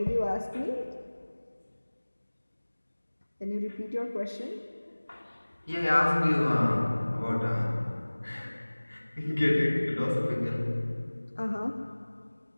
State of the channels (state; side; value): inverted; both; correlation -1.00